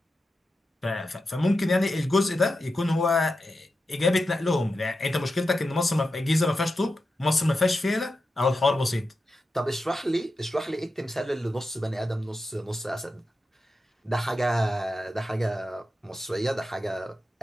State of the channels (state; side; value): normal; both; correlation 0.90